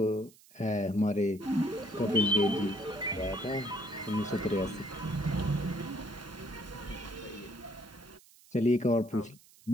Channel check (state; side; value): noise; right; hiss, 25 dB below the sound